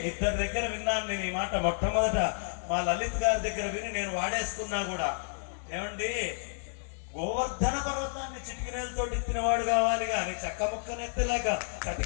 ఇద్దరి దగ్గర విన్నాను నేను ఈ మాట. మొట్టమొదట మా లలిత్ గారి దగ్గర విని నేను వాడేసుకున్నా కూడా. ఏమండి, గోవర్ధన పర్వతాన్ని చిటికినేలతో ఎత్తినవాడు కావాలి కానీ చక్క ముక్కనెత్తలేక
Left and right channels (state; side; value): silent; right; digital silence